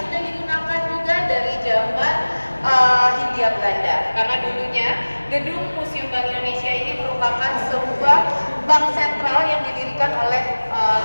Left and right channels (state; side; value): inverted; both; correlation -1.00